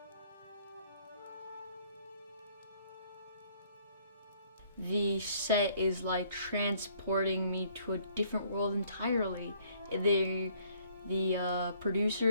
The set is like transporting me to a different world entirely. The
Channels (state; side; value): inverted; both; correlation -0.63